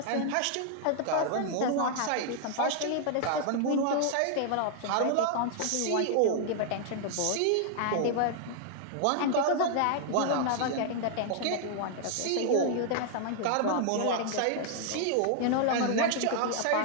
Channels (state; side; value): different; both; correlation 0.00